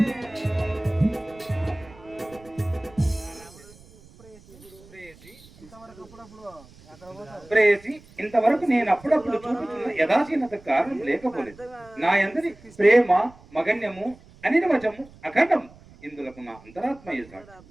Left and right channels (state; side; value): noise; right; rumble, 24 dB below the sound